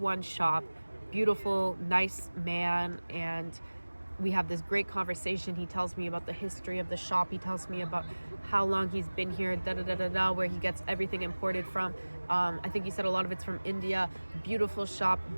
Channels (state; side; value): inverted; both; correlation -1.00